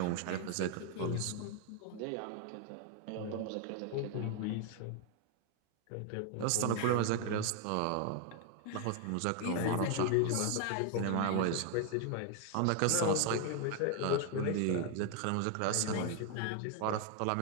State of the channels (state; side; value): different; both; correlation 0.00